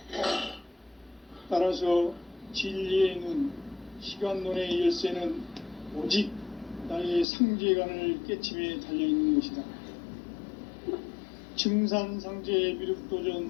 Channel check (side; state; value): right; drops out; at 7.2 s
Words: 따라서 진리의 눈, 시간론의 열쇠는 오직 나의 상제관을 깨침에 달려있는 것이다. 증산상제